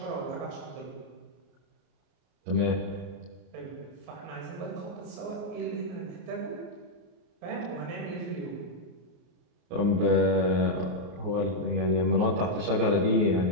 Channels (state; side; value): late; left; 34 ms